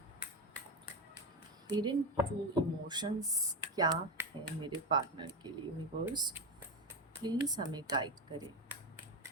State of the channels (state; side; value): normal; both; correlation 0.15